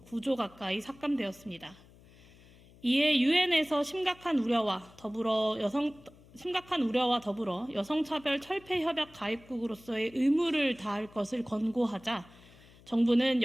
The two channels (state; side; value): noise; left; hum, 24 dB below the sound